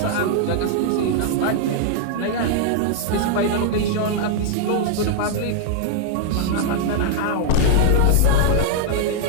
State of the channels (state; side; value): different; both; correlation -0.01